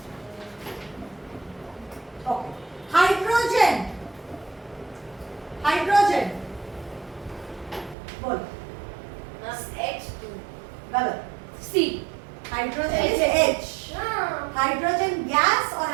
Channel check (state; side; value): drops out; left; at 8.0 s